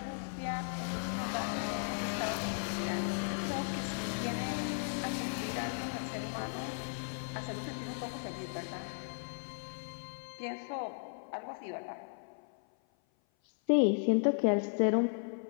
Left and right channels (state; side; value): silent; right; 54 dB below the other